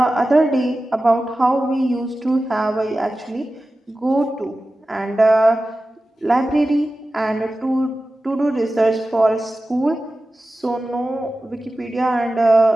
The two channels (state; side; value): normal; both; correlation 0.95